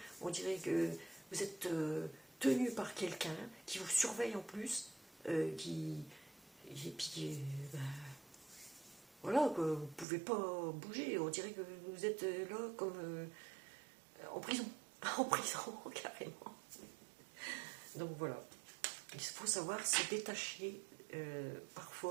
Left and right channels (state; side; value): drops out; left; at 10.1 s